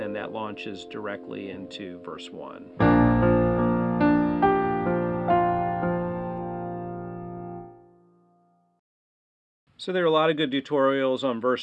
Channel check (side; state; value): both; identical; correlation 1.00